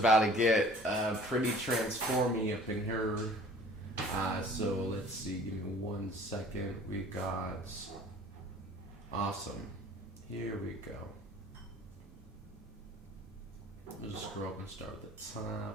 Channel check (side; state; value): both; normal; correlation 0.49